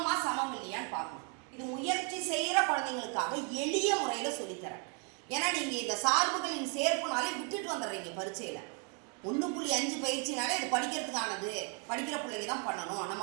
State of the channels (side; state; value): left; quieter; 36.0 dB